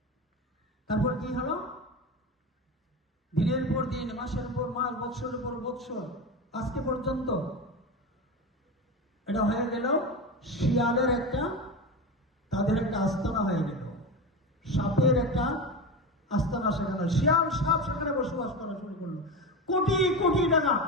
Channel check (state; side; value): normal; both; correlation 0.23